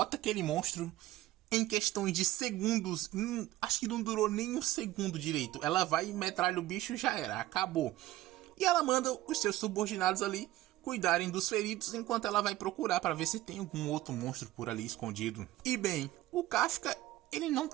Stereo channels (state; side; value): quieter; left; 15.9 dB